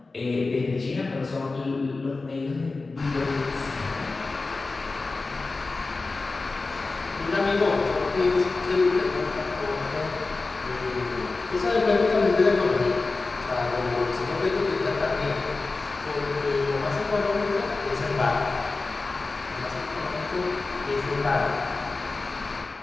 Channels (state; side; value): quieter; right; 3.7 dB